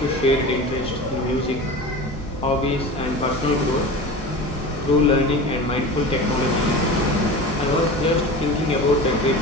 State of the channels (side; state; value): both; normal; correlation 0.32